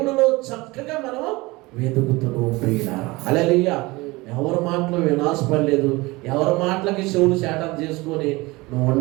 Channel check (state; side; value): quieter; left; 22.4 dB